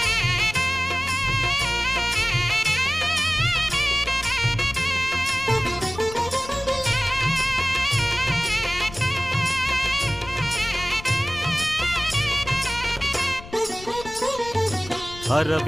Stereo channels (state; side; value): noise; left; rumble, 16 dB below the sound